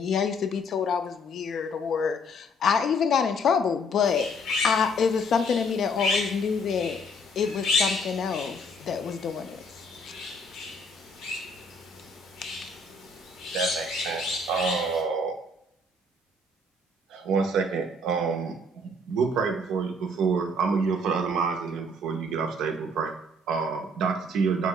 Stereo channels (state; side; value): normal; both; correlation 0.63